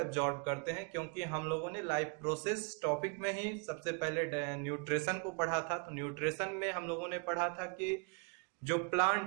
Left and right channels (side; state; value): left; quieter; 36.6 dB